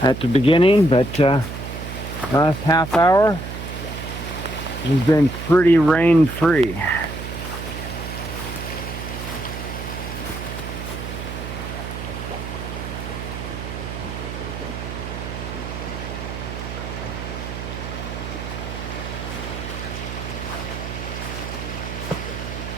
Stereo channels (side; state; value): right; noise; hum, 7 dB below the sound